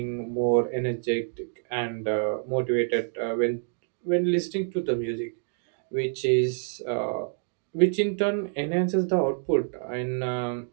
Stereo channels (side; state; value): left; silent; digital silence